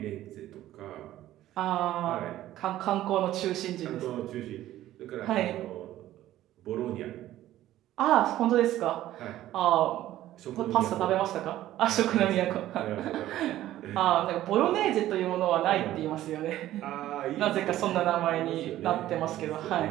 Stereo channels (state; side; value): quieter; left; 13.9 dB